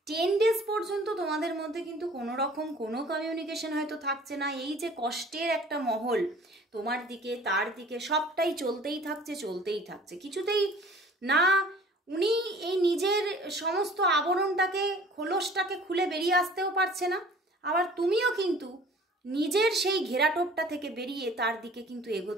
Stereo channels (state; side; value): normal; both; correlation 0.49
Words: 10 ডেজ পর্যন্ত তোমাদের মধ্যে কিন্তু কোনো রকম কোনো কমিউনিকেশন হয়তো থাকছে না। এই যে কষ্টের একটা মহল তোমার দিকে তার দিকে সবটাই চলতেই থাকছে, কিছুতেই না উনি এই নিজের সমস্ত আবরণটাকে খোলসটাকে খুলে বেরিয়ে আসতেও পারছে না, আবার তুমিও কিন্তু নিজের সেই ঘেরাটোপটা থেকে বেরিয়ে তার দিকে কিন্তু